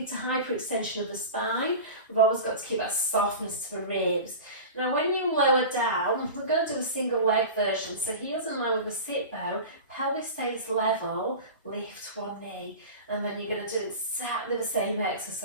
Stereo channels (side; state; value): both; inverted; correlation -0.32